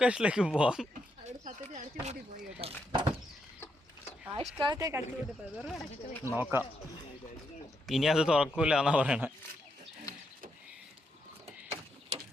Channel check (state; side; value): normal; both; correlation 0.80